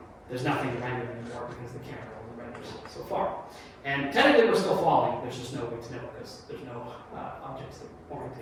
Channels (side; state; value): both; identical; correlation 1.00